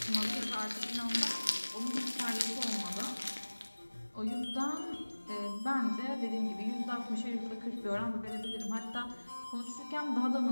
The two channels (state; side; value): inverted; both; correlation -1.00